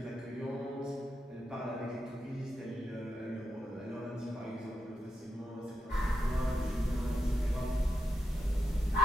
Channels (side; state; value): both; normal; correlation 0.86